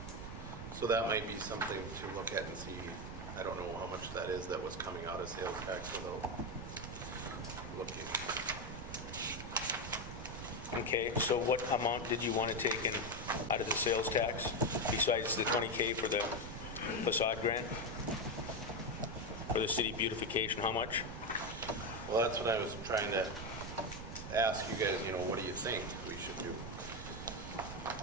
So that might be something to look at and see. I don't know how much that is that was coming out of sales tax without looking. Okay, so what amount did you want to take in out of the sales tax besides the 20K for the facade grant? For the city beautification, how much? Well, that's what I was trying to ask you guys, you know, what do you think we should do?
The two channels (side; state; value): right; noise; rumble, 9 dB below the sound